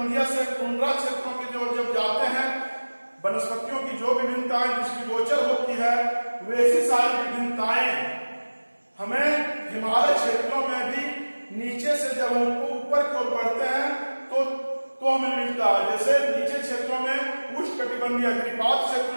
से टुंड्रा क्षेत्रों के जब जाते हैं वनस्पतियों की जो विभिन्नताएं दृष्टिगोचर होती है वैसी सारी विभिन्नताएं हमें हिमालय क्षेत्रों में भी नीचे से जब हम ऊपर की ओर बढ़ते हैं तो हमें मिलता है। जैसे नीचे क्षेत्रों में उष्णकटिबंधीय गिरिपात क्षेत्र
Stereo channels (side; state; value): both; inverted; correlation -1.00